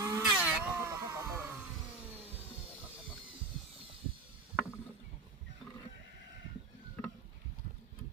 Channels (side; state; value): left; quieter; 3.6 dB